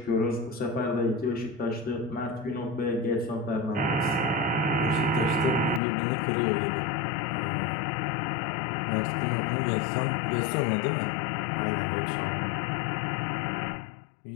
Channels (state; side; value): drops out; right; at 5.8 s